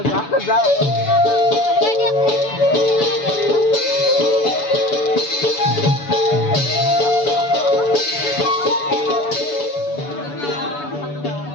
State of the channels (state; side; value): late; right; 7.0 ms